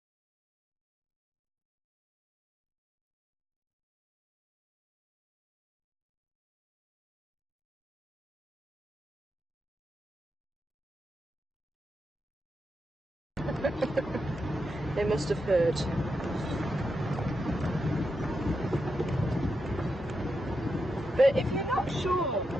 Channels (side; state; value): both; normal; correlation 0.86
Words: They must have heard. But if you're not sure